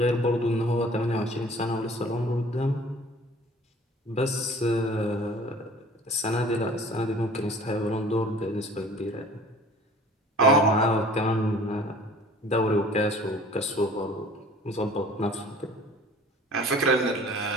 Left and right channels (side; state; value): both; normal; correlation 0.48